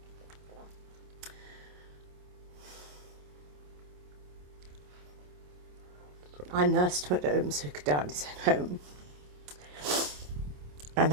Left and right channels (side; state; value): left; late; 27 ms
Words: I nursed him at home so he could die in his own home. And